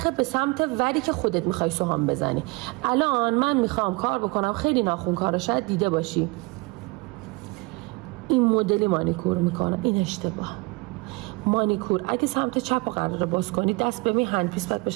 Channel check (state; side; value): quieter; left; 26.7 dB